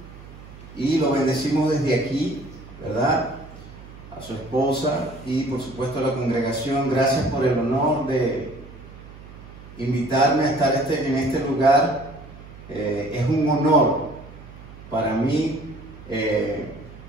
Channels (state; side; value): noise; right; hum, 18 dB below the sound